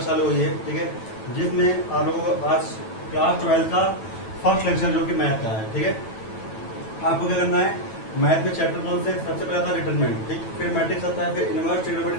चालू हुई है, ठीक है, जिसमें आप लोगों को आज क्लास 12 का फर्स्ट लेक्चर जो कि मैथ का है, ठीक है। आपको क्या करना है, मैथ में चैप्टर 1 से सबसे पहले आता है डिटरमिनेंट, ठीक, फिर मैट्रिक्स आता है, फिर इनवर्स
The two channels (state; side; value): late; right; 9.1 ms